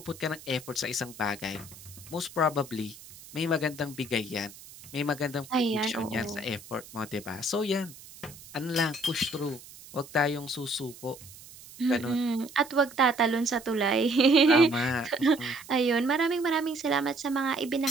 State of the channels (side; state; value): right; noise; hiss, 18 dB below the sound